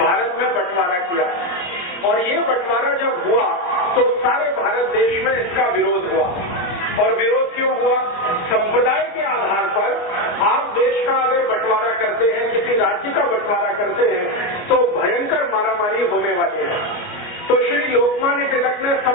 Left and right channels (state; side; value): late; right; 29 ms